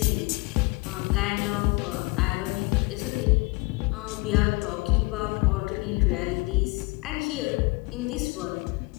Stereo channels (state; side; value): quieter; right; 26.0 dB